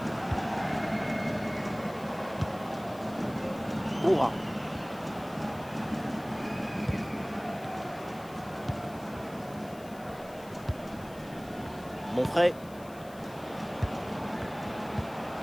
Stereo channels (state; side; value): noise; left; hiss, 22 dB below the sound